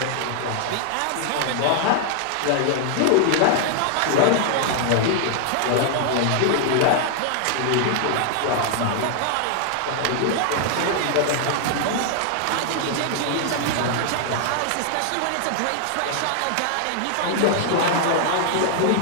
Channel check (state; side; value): different; both; correlation 0.00